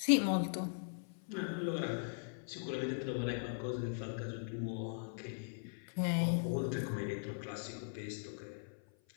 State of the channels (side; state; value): right; silent; 51 dB below the other